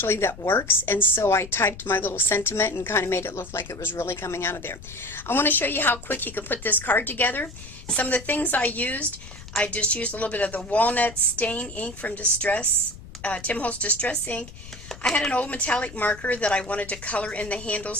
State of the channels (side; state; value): left; noise; rumble, 16 dB below the sound